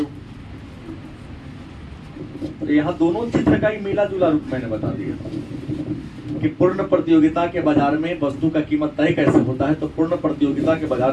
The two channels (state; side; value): identical; both; correlation 1.00